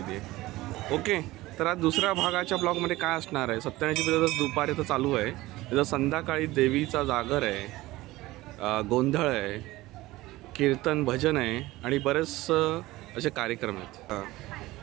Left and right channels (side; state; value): left; quieter; 18.4 dB